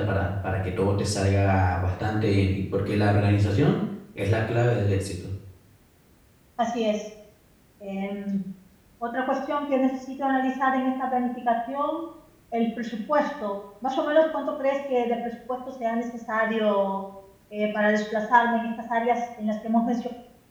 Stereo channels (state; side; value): identical; both; correlation 1.00